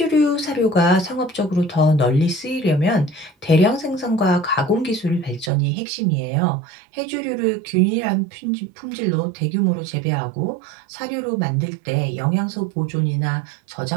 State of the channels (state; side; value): drops out; left; at 5.5 s